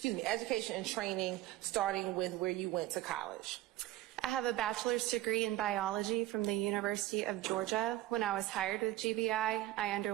starting with where you went to college. I have a bachelor's degree in biology from the University of Georgia. When I was hired with GBI, I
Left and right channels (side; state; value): left; quieter; 15.3 dB